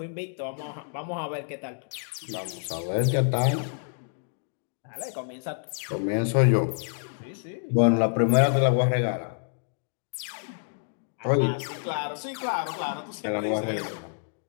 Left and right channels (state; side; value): silent; right; digital silence